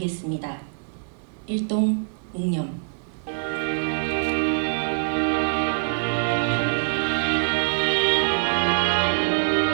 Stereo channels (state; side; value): silent; left; digital silence